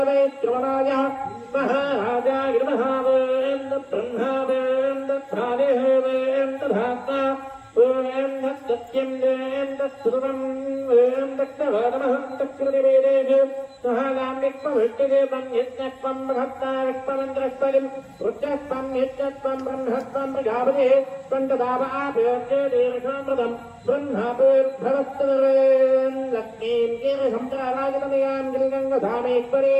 శ్రవణాయ महाराजा गिरमहावेन्द्र ब्रह्मावेन्द्र ध्रादेवेन्द्र धाता वेन्द्र सत्यं वेन्द्र सर्वं वेन्द्र दक्षवादमहं दक्षकृतिवेदेषु सहागाम्यक्पवृष्टिदेवं यज्ञत्वं महत्ताविक्पमन्त्रस्परिं रुद्रस्त्वं यज्ञत्वं ब्रह्मत्वं प्रजापतिः त्वन्तदावाभ्योच्येदेवशामृतं ब्रह्मापूर्भवस्तवेन् लक्ष्मीं कीर्षंसराराजतमयां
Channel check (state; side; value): identical; both; correlation 1.00